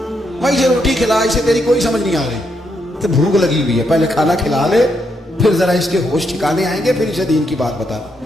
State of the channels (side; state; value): both; normal; correlation 0.79